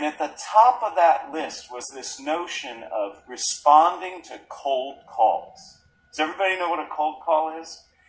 at the top of that list was this notion of responding to cold calls. Does everybody know what a cold call is?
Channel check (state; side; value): identical; both; correlation 1.00